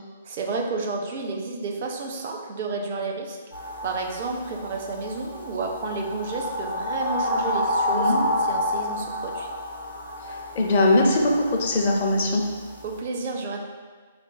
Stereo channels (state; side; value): inverted; both; correlation -0.60